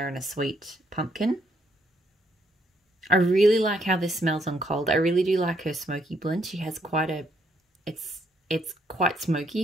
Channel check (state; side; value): normal; both; correlation 0.71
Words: and a sweet pumpkin. I really like how this smells on cold. I really do like her smoky blend. She has quite a, it's quite